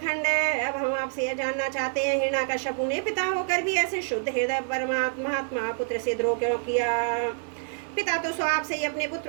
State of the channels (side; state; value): left; silent; 57 dB below the other